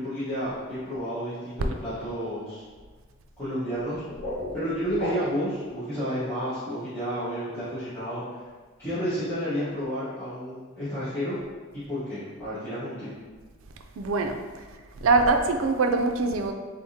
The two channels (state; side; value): normal; both; correlation 0.11